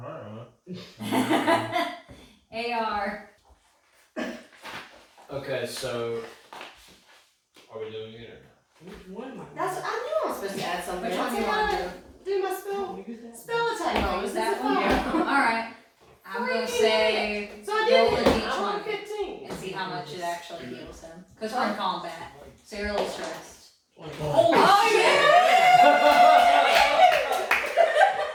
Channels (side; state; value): both; identical; correlation 1.00